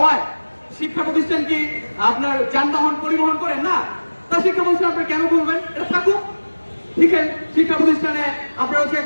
শিক্ষা প্রতিষ্ঠান কি আপনার যানবাহন পরিবহন করেন না? তা শিক্ষা প্রতিষ্ঠান আপনি কেন বলবেন? এটা থাকুক, ঠিক আছে। শিক্ষা প্রতিষ্ঠানে আপনার হচ্ছে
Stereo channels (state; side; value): inverted; both; correlation -1.00